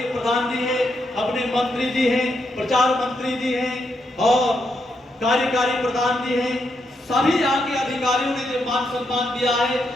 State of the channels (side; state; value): both; normal; correlation 0.80